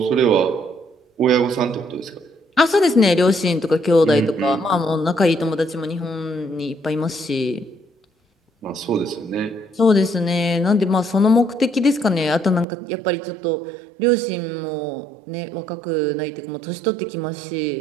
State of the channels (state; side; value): drops out; left; at 12.7 s